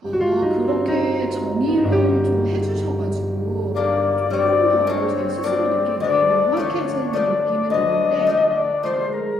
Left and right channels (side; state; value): both; normal; correlation 0.80